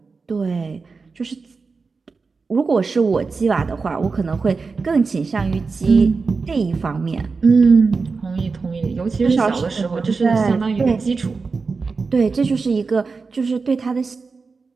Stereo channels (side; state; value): left; quieter; 4.5 dB